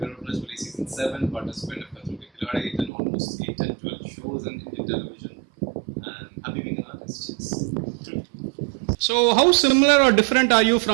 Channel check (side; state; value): left; drops out; at 2.9 s